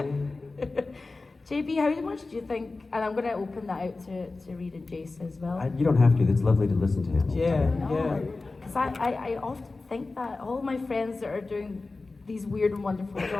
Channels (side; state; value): right; quieter; 3.6 dB